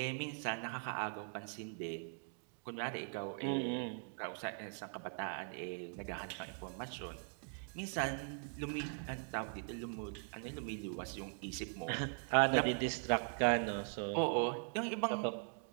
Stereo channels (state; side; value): silent; left; 50 dB below the other